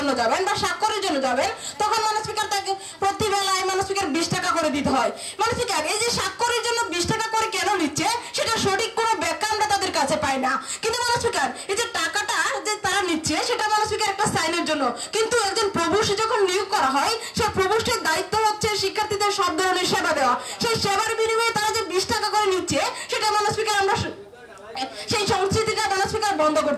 যাবেন বা স্বাক্ষরের জন্য যাবেন তখন মাননীয় স্পিকার তাকে প্রতি বেলায় মাননীয় স্পিকার 20 টাকা করে দিতে হয়। মাননীয় স্পিকার এই যে স্বাক্ষরের জন্য 20 টাকা করে কেন নিচ্ছে সেটা সঠিক কোনো ব্যাখ্যা আমরা তাদের কাছে পাই না। কিন্তু মাননীয় স্পিকার এই যে টাকাটা যে তারা নিচ্ছে সেটা মাননীয় স্পিকার একটা সাইনের জন্য, কিন্তু একজন প্রভোস্ট যখন নিয়োগ করা হয় সেই প্রভোস্টের দায়িত্ব হচ্ছে শিক্ষার্থীদের সব ধরনের সেবা দেওয়া। সেই সেবার বিনিময়ে তারা যে 20 টাকা করে দিচ্ছে, সেটা মাননীয় স্পিকার আমরা সেই সংস্কৃতিটা মাননীয় স্পিকার বন্ধ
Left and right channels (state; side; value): identical; both; correlation 1.00